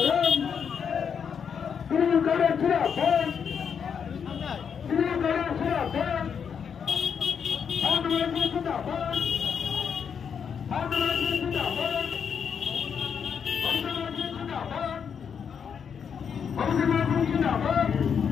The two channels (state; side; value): quieter; right; 7.1 dB